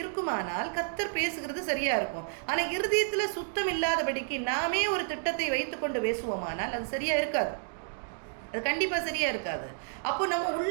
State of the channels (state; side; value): silent; left; digital silence